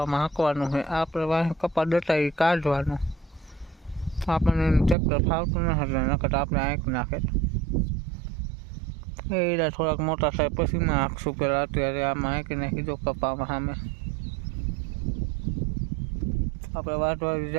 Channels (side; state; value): left; drops out; at 5.0 s